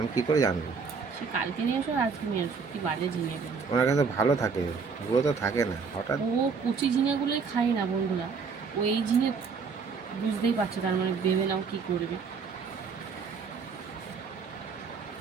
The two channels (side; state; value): left; quieter; 5.3 dB